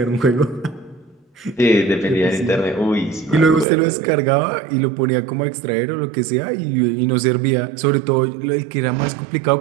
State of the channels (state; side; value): drops out; left; at 3.7 s